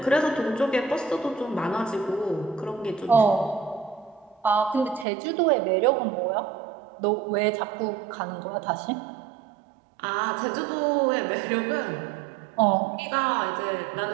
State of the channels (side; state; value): left; drops out; at 5.1 s